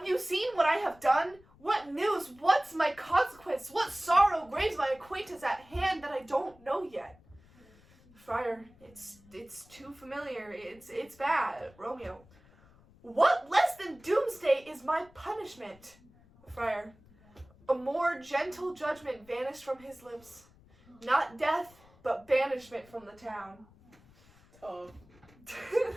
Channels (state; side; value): noise; left; rumble, 27 dB below the sound